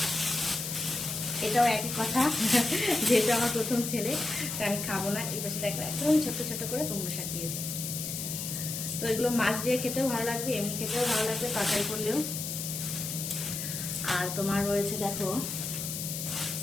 এটাও একই কথা, যেহেতু আমার প্রথম ছেলে তাই আমি খাবো না। এই পাশে দেখো একদম ছোট্ট ছোট্ট করে কুমড়ো শাক দিয়েছে। তো এগুলো মাছ দিয়ে খেতেও ভালো লাগবে, এমনি খেতেও ভালো লাগবে, তরকারি করলেও। আর তোমার রয়েছে দেখো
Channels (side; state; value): left; noise; hiss, 5 dB below the sound